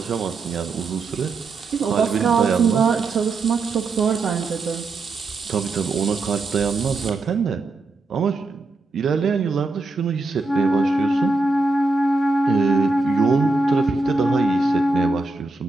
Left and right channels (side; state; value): left; quieter; 3.4 dB